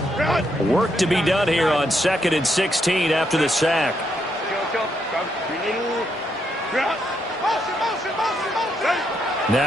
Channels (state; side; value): normal; both; correlation 0.78